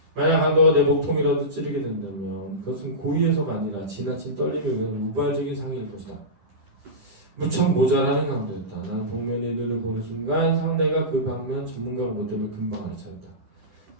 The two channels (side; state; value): left; late; 10 ms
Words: 만약 강도가 내 목통이라도 찌르게 된다면 그것은 고의해서가 아니라 지나친 떨림에 의한 우발적인 상해일 것이다. 무척 모자라는 강도였다. 나는 복면의 눈을 보는 순간 상대가 그 방면 전문가로 못 되면 금방 알아차렸다.